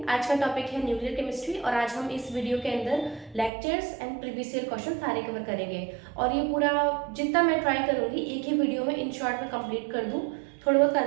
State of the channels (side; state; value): left; drops out; at 3.5 s